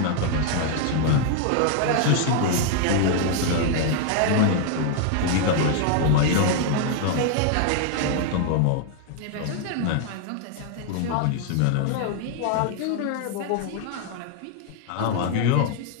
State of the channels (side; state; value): both; different; correlation 0.00